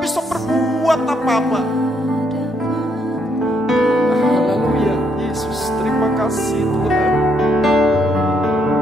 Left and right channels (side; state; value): both; normal; correlation 0.73